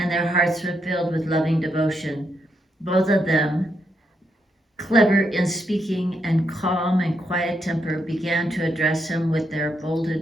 their hearts were filled with loving devotion. Both of them, clever in speaking and calm and quiet temper, began to address him with their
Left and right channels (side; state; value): both; normal; correlation 0.80